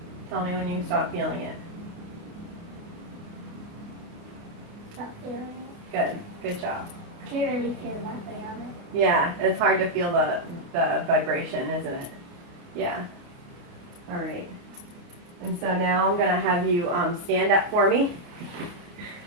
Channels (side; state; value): left; late; 29 ms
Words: Tell me when you stop feeling it. Stop feeling it. Good. Good job. Can't really feel nothing on it. Yeah, it's hard to feel the vibration, isn't it? Yeah. All right. And so now I'm going to have you stand up for me